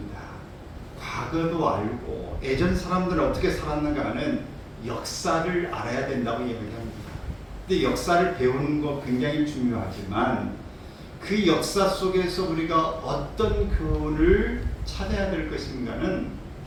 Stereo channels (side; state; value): both; identical; correlation 1.00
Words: 과거도 알고 예전 사람들은 어떻게 살았는가는 역사를 알아야 된다고 이야기합니다. 근데 역사를 배우는 거 굉장히 중요하지만 그 역사 속에서 우리가 어떤 교훈을 찾아야 될 것인가는